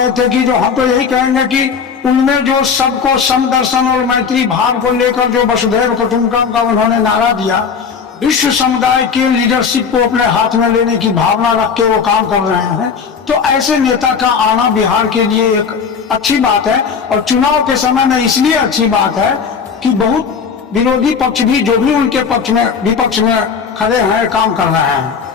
थे कि जो हम तो यही कहेंगे कि उनमें जो सबको समदर्शन और मैत्री भाव को लेकर जो वसुधैव कुटुंबकम का उन्होंने नारा दिया, विश्व समुदाय के लीडरशिप को अपने हाथ में लेने की भावना रख के वो काम कर रहे हैं। तो ऐसे नेता का आना बिहार के लिए एक अच्छी बात है, और चुनाव के समय में इसलिए अच्छी बात है कि बहुत विरोधी पक्ष भी जो भी उनके पक्ष में विपक्ष में खड़े हैं काम कर रहे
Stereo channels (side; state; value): right; quieter; 6.1 dB